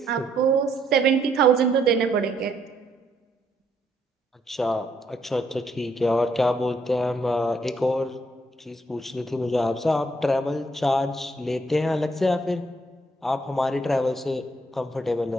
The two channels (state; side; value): normal; both; correlation 0.71